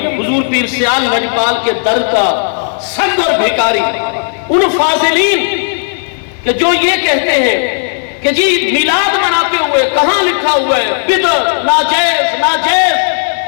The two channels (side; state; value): right; silent; digital silence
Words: حضور پیر سیال لجپال کے در کا سنگ اور بھیکاری، ان فاضلین کہ جو یہ کہتے ہیں کہ جی میلاد مناتے ہوئے کہاں لکھا ہوا ہے بدعت، ناجائز ناجائز۔